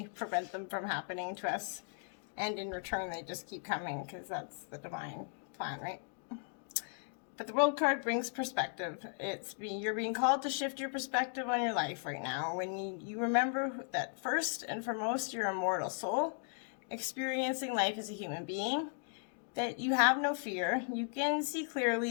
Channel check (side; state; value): right; silent; 53 dB below the other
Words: prevent them from happening to us. And in return, they just keep coming, because that's the divine plan, right? But the World card brings perspective. You're being called to shift your perspective on your life right now. When you remember that first and foremost, you're a mortal soul, experiencing life as a human being, that you have no fear. You can see